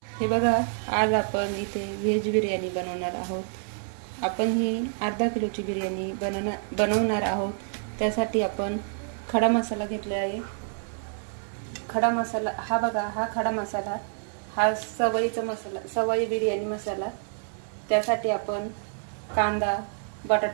हे बघा, आज आपण इथे व्हेज बिर्याणी बनवणार आहोत. आपण ही अर्धा किलोची बिर्याणी बनवणार आहोत. त्यासाठी आपण खडा मसाला घेतला आहे. खडा मसाला हा बघा, हा खडा मसाला, हा सवयीचा मसाला, सवयी बिर्याणी मसाला. त्यासाठी आपण कांदा,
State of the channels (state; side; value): silent; left; 60 dB below the other